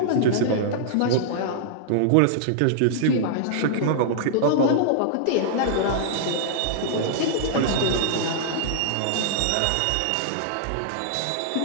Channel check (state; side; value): different; both; correlation -0.01